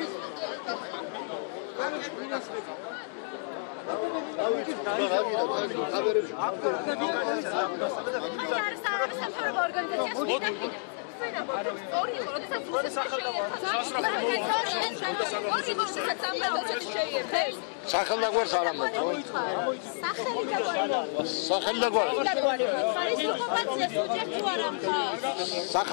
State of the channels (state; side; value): silent; right; 58 dB below the other